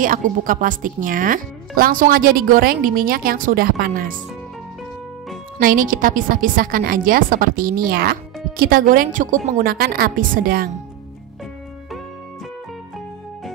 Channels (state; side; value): quieter; left; 12.4 dB